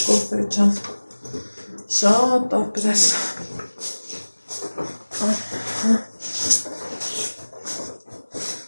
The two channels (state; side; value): inverted; both; correlation -1.00